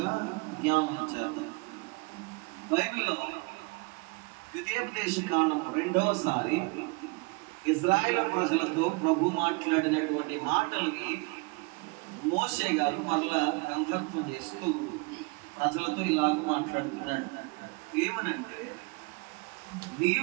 జ్ఞాపకం చేద్దాం. బైబిల్లో ద్వితీయోపదేశ కాండం రెండవసారి ఇజ్రాయేల్ ప్రజలతో ప్రభు మాట్లాడినటువంటి మాటల్ని మోషే గారు మరలా గ్రంథత్వం చేస్తూ ప్రజలతో ఇలాగ మాట్లాడుతున్నాడు. ఏమనంటే,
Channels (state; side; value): quieter; left; 29.4 dB